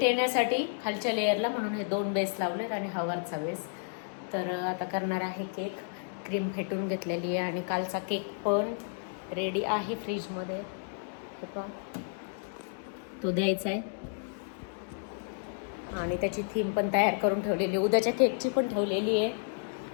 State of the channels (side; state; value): right; silent; 57 dB below the other